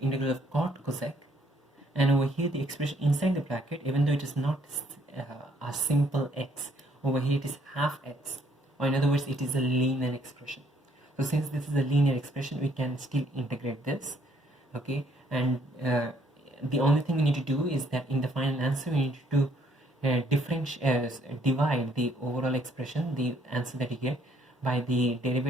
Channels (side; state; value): both; normal; correlation 0.66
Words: integral of cot cosec, and over here the expression inside the bracket, even though it is not a simple x, over here it is half x, or in other words it is a linear expression. So since this is a linear expression, we can still integrate this. Okay, and the only thing we need to do is that in the final answer we need to divide the overall expression, the answer that you get, by the